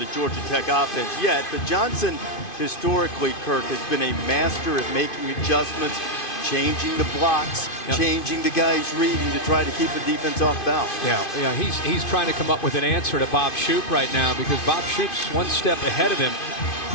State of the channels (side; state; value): right; late; 2.5 ms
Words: Georgia Tech offense yet, but Johnson, historically, Kirk, has been a master at making adjustments, changing the blocks, changing the guys reading to try to keep the defense off balance. Yeah, he's trying to come up with an answer to Bob Shoop right now, because Bob Shoop's one step ahead of him.